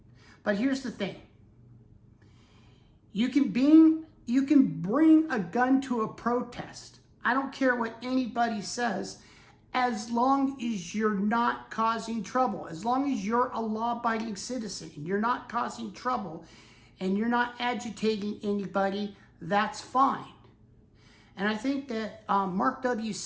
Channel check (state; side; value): identical; both; correlation 1.00